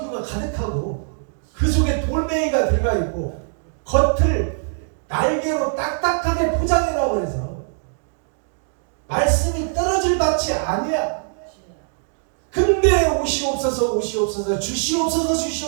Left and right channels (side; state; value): left; silent; digital silence